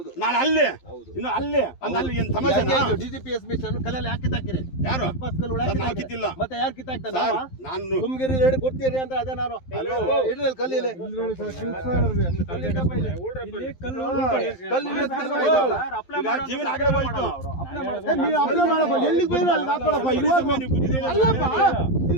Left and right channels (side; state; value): right; late; 11 ms